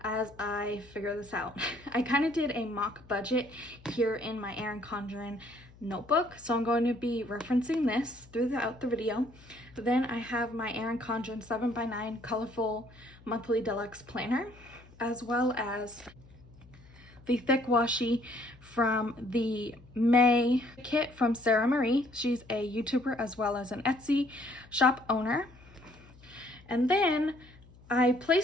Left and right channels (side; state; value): left; noise; hum, 23 dB below the sound